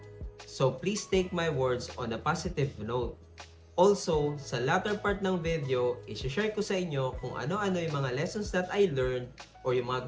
So please take my words on a positive note. Also, sa latter part ng video, isi-share ko sa inyo kung ano-ano yung mga lessons that I learned or yung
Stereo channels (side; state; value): both; identical; correlation 1.00